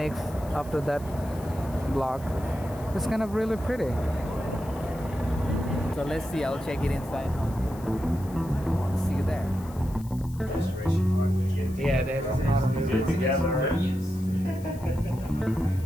after that block. It's kind of really pretty. So let's see. I'll check it inside. See you there. Yeah, there's a together.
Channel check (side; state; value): left; noise; hiss, 22 dB below the sound